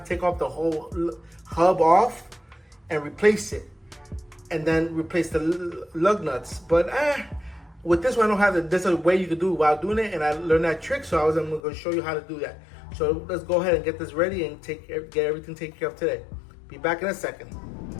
to take off the whole hub off and replace it. And then replace the lug nuts. But with this one, I don't have it. There's a way you can do it while doing it, and I learned that trick, so I'm going to show you how to do that. So let's go ahead and get this ready and get everything taken care of today. Be back in a second.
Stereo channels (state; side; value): drops out; right; at 11.6 s